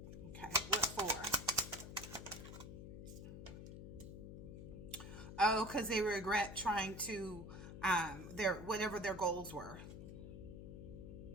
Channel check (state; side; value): noise; left; hum, 10 dB below the sound